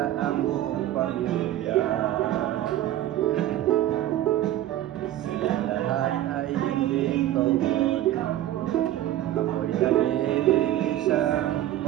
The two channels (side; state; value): left; quieter; 13.3 dB